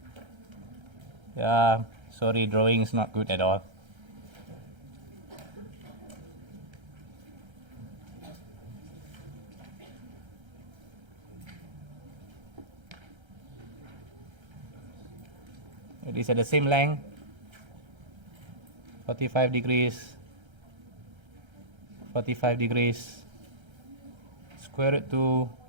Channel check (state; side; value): late; left; 1.3 ms